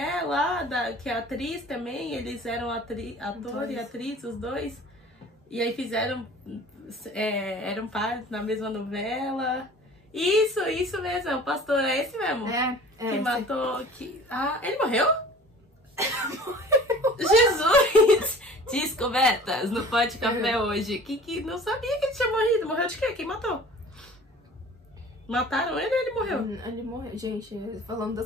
lá, que é atriz também? Eles eram ator e atriz, os dois. E aí eram pares na mesma novela. Isso mesmo, o pastor é esse mesmo? Que matou... ele morreu? Jesus! Descobertas no Pode Café hoje. Que não sabia que ele tinha morrido. Morreu de quê? Quem matou? Mataram ele ou ele morreu? Ele morreu, gente, falando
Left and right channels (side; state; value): both; normal; correlation 0.45